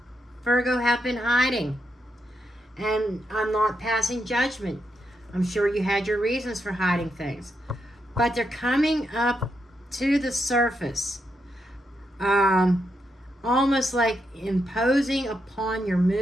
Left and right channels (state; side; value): normal; both; correlation 0.83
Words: Virgo, have been hiding. And I'm not passing judgment. I'm sure you had your reasons for hiding things. But they're coming up to the surface. Almost like imposing upon your